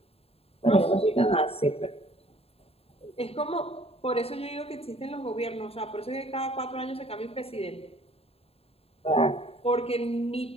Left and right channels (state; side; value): late; right; 0.29 ms